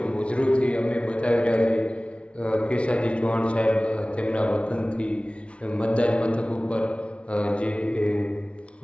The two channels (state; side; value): late; right; 0.060 ms